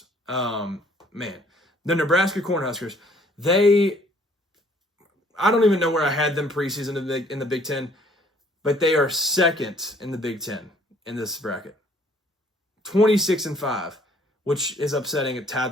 Man, the Nebraska Cornhuskers. I don't even know where I had them preseason in the Big Ten, but they are second in the Big Ten in this bracket. 26-5, which is upsetting. It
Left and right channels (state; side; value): normal; both; correlation 0.60